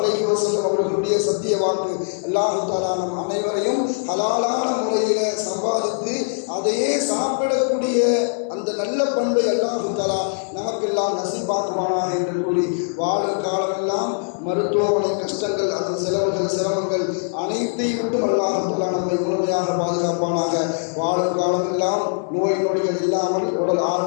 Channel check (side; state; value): right; silent; digital silence